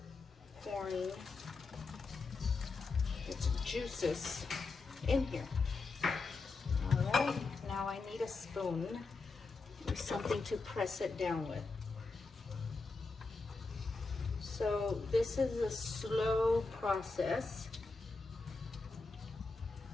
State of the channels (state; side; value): quieter; right; 4.0 dB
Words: pouring its juices in here. All right, now I need a spoon or something to press it down with. So this is a slow process.